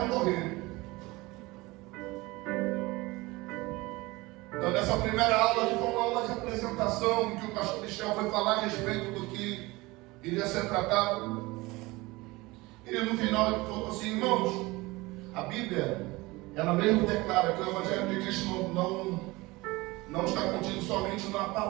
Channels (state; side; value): quieter; left; 21.9 dB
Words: morrer. Então, nessa primeira aula, que foi uma aula de apresentação, em que o pastor Michel foi falar a respeito do que iria ser tratado. E no final ele falou assim: irmãos, a Bíblia, ela mesmo declara que o Evangelho de Cristo não está contido somente na